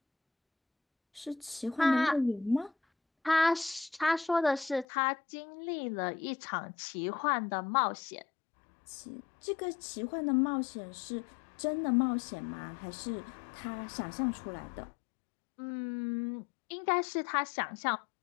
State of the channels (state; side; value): drops out; right; at 4.9 s